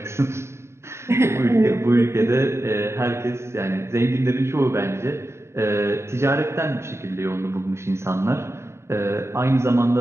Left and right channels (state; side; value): late; left; 0.13 ms